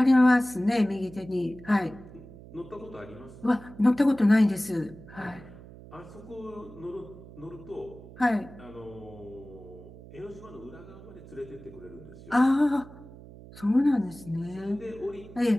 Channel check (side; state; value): right; noise; hum, 18 dB below the sound